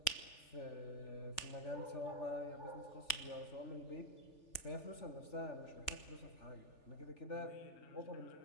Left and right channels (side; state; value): right; late; 3.4 ms